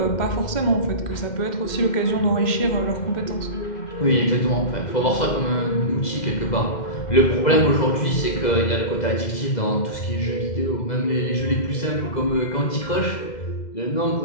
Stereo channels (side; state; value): right; late; 2.0 ms